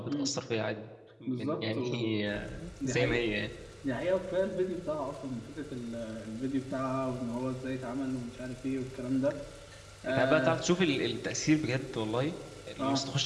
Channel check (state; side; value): identical; both; correlation 1.00